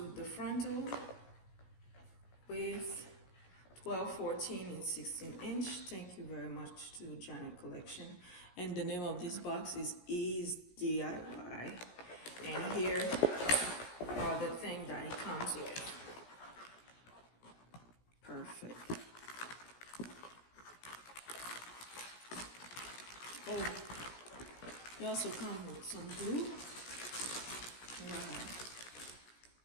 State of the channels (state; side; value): late; right; 17 ms